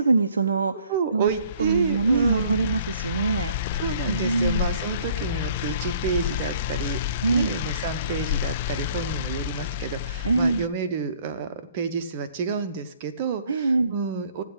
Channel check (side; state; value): both; inverted; correlation -0.57